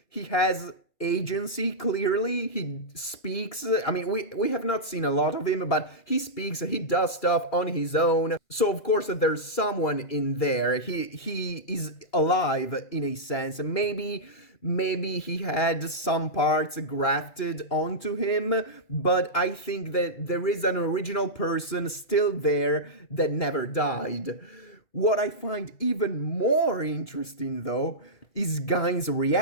he has agency, clearly. He speaks. I mean, we have not seen a lot of him, but he speaks, he does stuff on his own. So of course there's someone in there. He is alive in a sense. Maybe he had some parts grafted onto him, but I think that there is an original person still there that never died. What I find even more interesting, though, is Gain's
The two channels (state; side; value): late; right; 2.4 ms